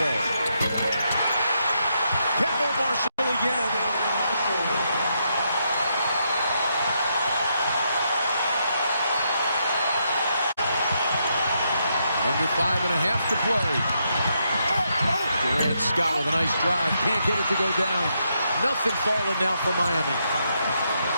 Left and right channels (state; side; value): inverted; both; correlation -0.79